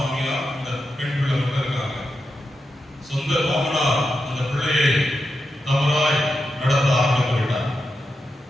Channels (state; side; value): normal; both; correlation 0.87